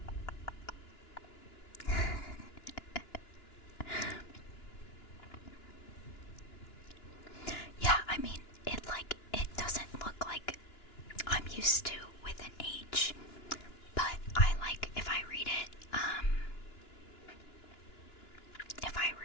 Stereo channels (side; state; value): right; late; 2.9 ms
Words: Yeah, I mean, it doesn't look like I'm used to with an H, but I like if I read it,